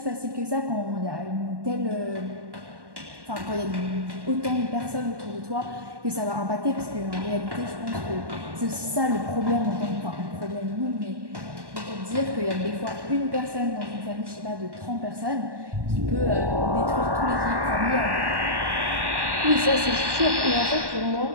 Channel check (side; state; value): left; late; 1.1 ms